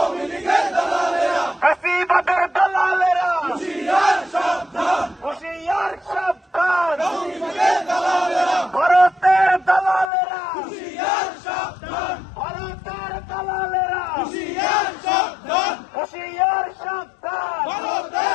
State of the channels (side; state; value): right; drops out; at 10.1 s